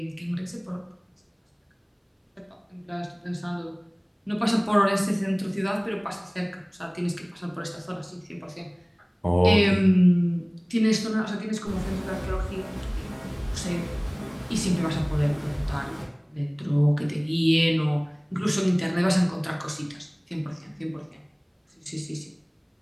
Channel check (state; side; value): identical; both; correlation 1.00